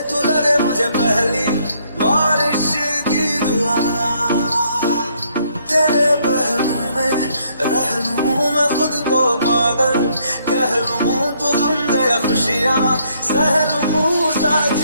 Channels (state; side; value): inverted; both; correlation -0.69